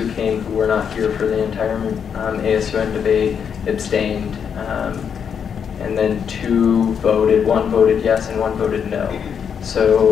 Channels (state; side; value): quieter; right; 7.4 dB